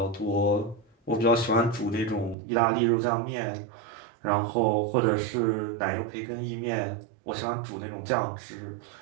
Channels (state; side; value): drops out; left; at 2.4 s